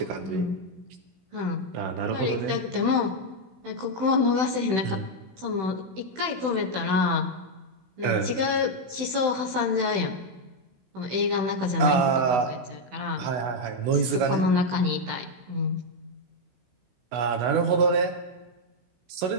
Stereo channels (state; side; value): late; left; 16 ms